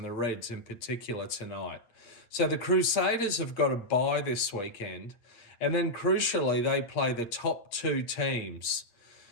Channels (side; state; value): right; late; 8.6 ms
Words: the Reds in particular tonight. So the Crusaders have got a bye this weekend. And then crucially, they play the top 2 teams